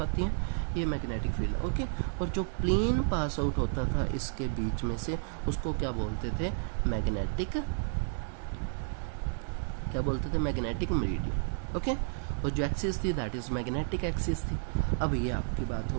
आती हैं, ये मैग्नेटिक फील्ड, ओके। और जो प्लेन पास आउट होता था इसके बीच में से, उसको क्या बोलते थे? मैग्नेटिक, क्या बोलते थे? Magnetic meridian, okay. और जो एक्सिस थी दैट इज मैग्नेटिक एक्सिस थी। अब ये आपकी बात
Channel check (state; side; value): silent; left; digital silence